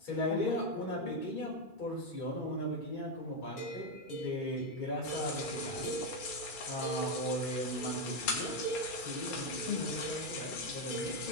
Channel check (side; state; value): right; late; 2.4 ms